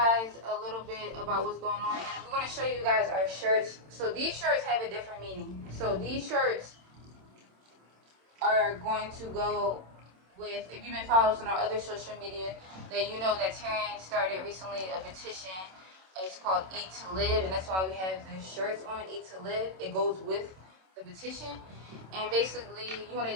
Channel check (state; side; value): late; left; 27 ms